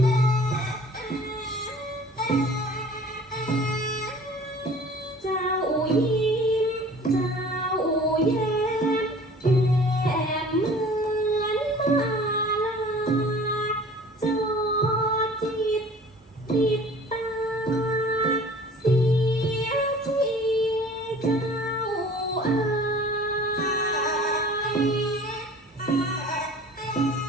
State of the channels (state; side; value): normal; both; correlation 0.47